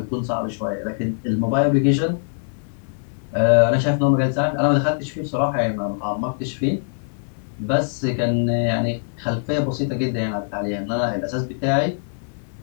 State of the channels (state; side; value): silent; right; digital silence